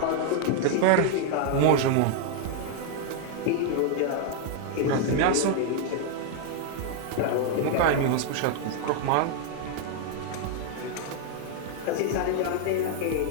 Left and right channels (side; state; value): both; different; correlation 0.00